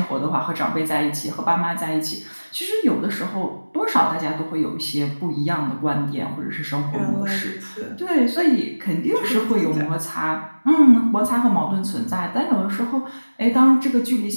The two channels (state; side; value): inverted; both; correlation -1.00